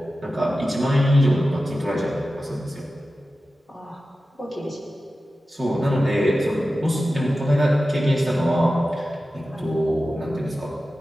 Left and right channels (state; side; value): normal; both; correlation 0.94